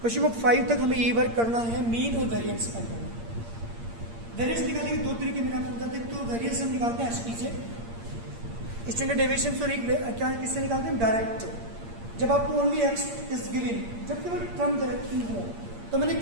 Question number 5 तक हमें ये वर्क करना है, मीन और वेरिएंस फाइंड करना है। वेरिएंस निकालने के 2 तरीके मैंने आपको बताते हैं। तो वेरिएंस हम निकालते हैं एसपी से, स्टैंडर्ड डेविएशन, सॉरी क्या किससे निकालते हैं, डायरेक्ट। जब आपको ओनली एक्स इज गिवन, जब केवल टर्म डायरेक्ट हो, तो मैंने एक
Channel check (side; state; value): left; late; 8.7 ms